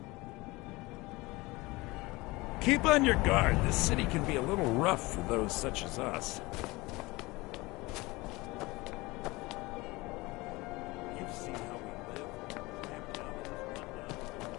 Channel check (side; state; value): right; quieter; 22.3 dB